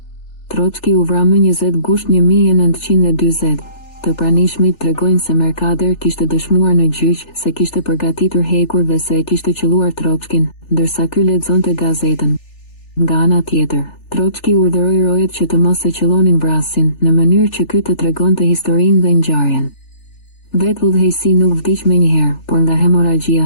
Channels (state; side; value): late; right; 3.4 ms